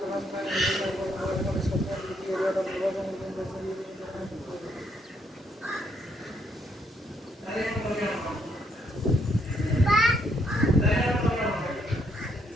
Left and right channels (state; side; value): normal; both; correlation 0.73